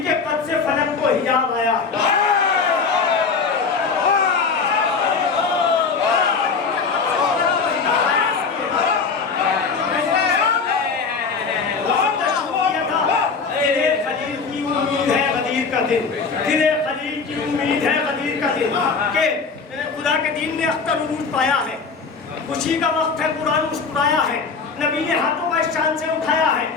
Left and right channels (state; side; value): quieter; right; 5.0 dB